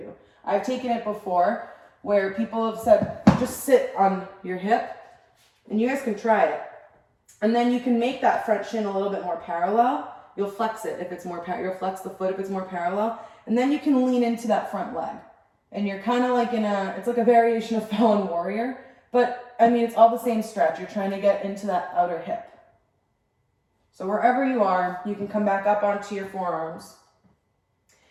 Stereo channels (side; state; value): both; identical; correlation 1.00